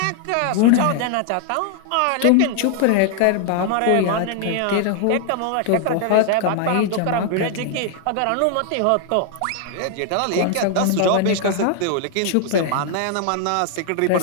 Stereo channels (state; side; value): different; both; correlation 0.00